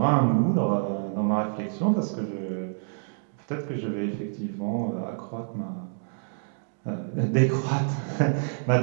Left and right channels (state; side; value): silent; left; digital silence